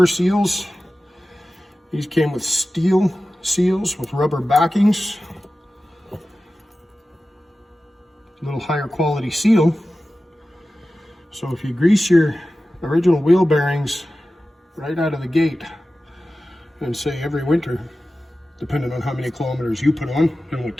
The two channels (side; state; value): both; normal; correlation 0.95